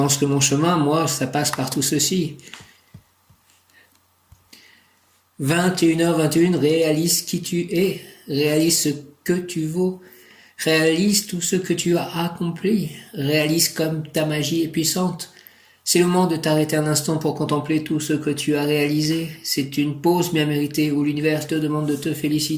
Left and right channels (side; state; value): both; identical; correlation 1.00